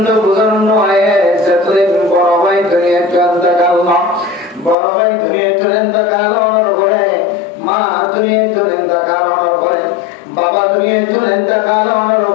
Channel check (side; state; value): right; drops out; at 4.8 s